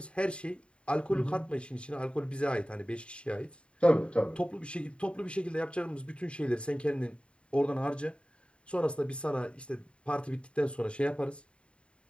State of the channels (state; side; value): late; right; 0.057 ms